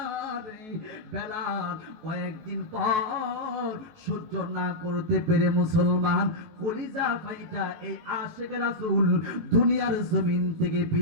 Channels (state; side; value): late; left; 19 ms